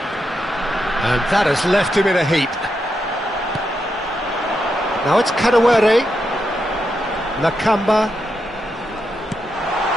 And that has left him in a heap. Now it's Kadewere. Nakamba.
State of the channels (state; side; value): normal; both; correlation 0.84